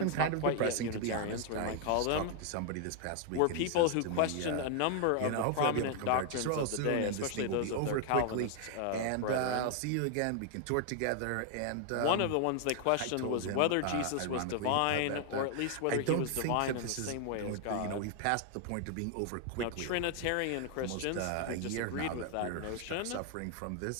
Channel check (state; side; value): different; both; correlation 0.00